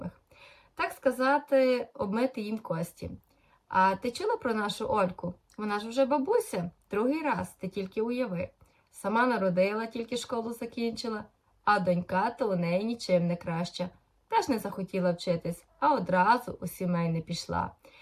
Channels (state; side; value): identical; both; correlation 1.00